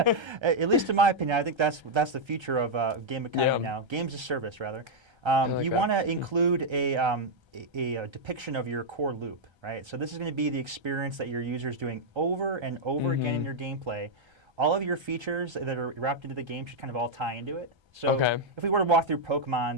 least in my opinion, I think that's the future of game economy now. Games as service, rather. You want to include a depiction of your core loop, right? So this is going to be the experience that your user is doing over and over again in your gameplay. All of your features that are wrapped into the game should kind of all tie into it. So if we were to walk through Pokemon,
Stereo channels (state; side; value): late; left; 1.3 ms